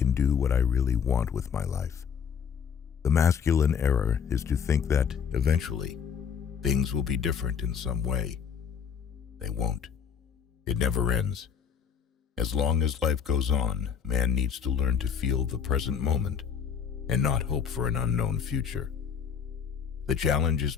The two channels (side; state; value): right; quieter; 7.4 dB